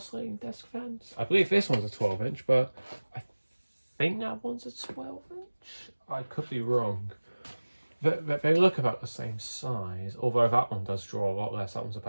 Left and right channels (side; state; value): both; inverted; correlation -1.00